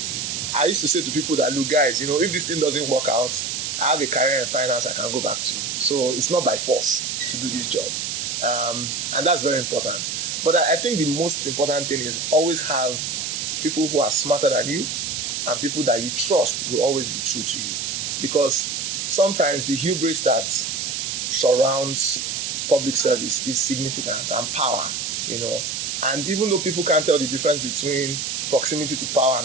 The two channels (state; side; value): noise; right; hiss, 2 dB below the sound